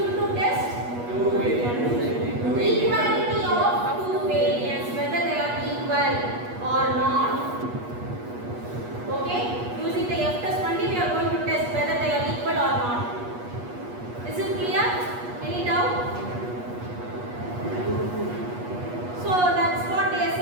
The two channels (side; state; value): left; late; 8.3 ms